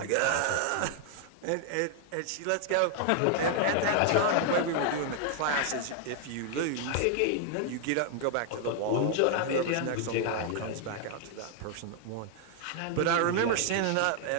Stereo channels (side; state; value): both; different; correlation 0.00